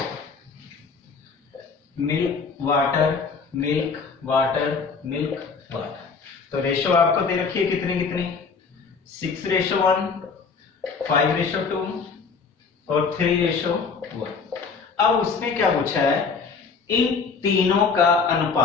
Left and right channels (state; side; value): quieter; right; 5.1 dB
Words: milk water milk water milk water. तो रेशो आपको दे रखी है कितनी कितनी 6:1, 5:2 और 3:1। अब उसने क्या पूछा है, इन तीनों का